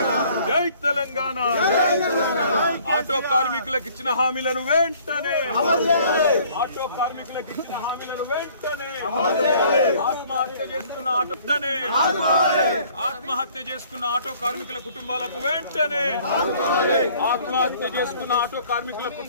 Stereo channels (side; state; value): both; inverted; correlation -0.56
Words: జై తెలంగాణ ఆటో కార్మికులకు ఇచ్చిన హామీలను వెంటనే ఆటో కార్మికులకు ఇచ్చిన హామీలను వెంటనే ఆత్మహత్య చేసుకున్న ఆత్మహత్య చేసుకున్న ఆటో కార్మికుల కుటుంబాలకు వెంటనే ఆత్మహత్య చేసుకున్న ఆటో కార్మికుల